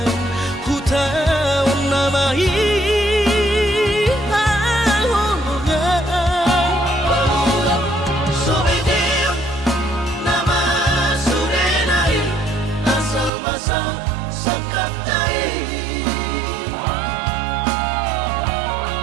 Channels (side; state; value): left; drops out; at 13.3 s